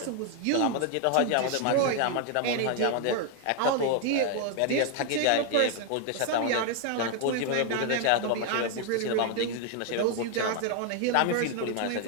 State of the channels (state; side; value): different; both; correlation 0.00